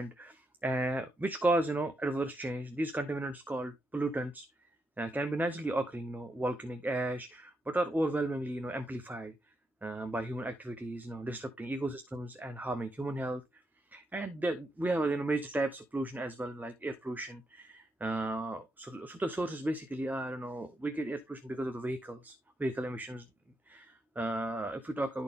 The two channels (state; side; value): normal; both; correlation 0.82